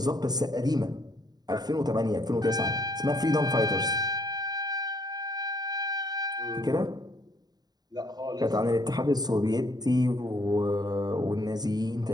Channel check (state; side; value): late; left; 0.19 ms